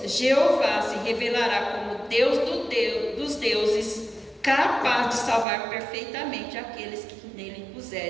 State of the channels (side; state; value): left; drops out; at 5.5 s